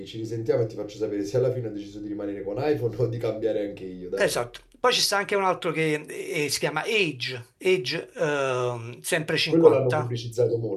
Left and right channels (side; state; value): both; identical; correlation 1.00